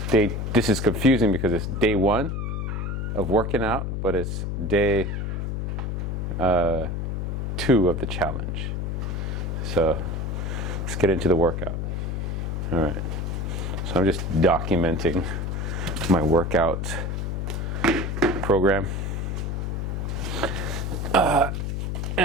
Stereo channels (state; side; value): noise; left; hum, 2 dB below the sound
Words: this is confusing because it's day 1 of working out, but it's day 2 of the challenge. So let's get into the workout. All right, so I'm just documenting my workout program.